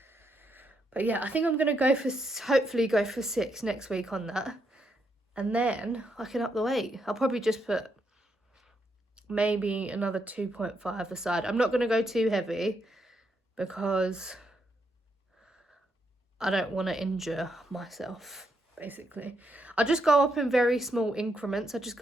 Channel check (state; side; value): normal; both; correlation 0.79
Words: But yeah, I think I'm gonna hopefully go for 6 next week on that, and then I can up the weight. I'll probably just put maybe another 2.5 aside. I'm not gonna go too heavy because I don't want to injure myself, basically. I just go up in very small increments. I just